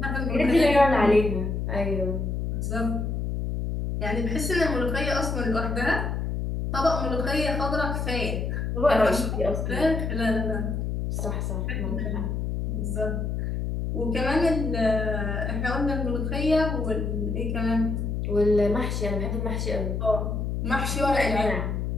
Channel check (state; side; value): noise; left; hum, 1 dB below the sound